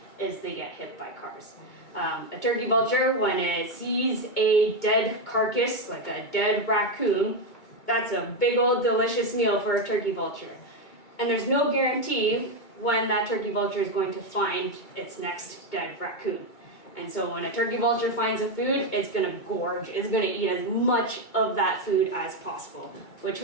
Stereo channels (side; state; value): right; late; 2.3 ms